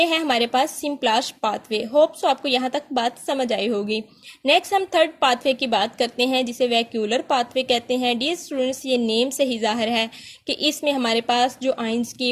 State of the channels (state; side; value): identical; both; correlation 1.00